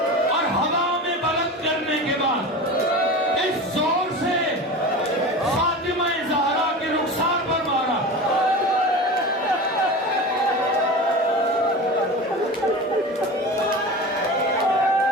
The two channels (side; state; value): both; normal; correlation 0.31